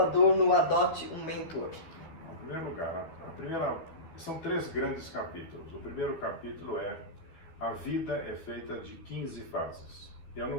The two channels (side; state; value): right; late; 12 ms